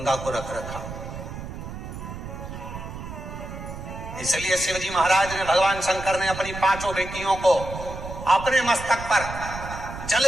को रख रखा। इसलिए शिवजी महाराज ने, भगवान शंकर ने अपनी 5 बेटियों को अपने मस्तक पर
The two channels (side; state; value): right; noise; rumble, 9 dB below the sound